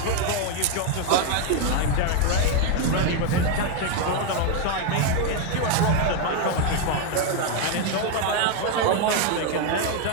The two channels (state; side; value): different; both; correlation 0.01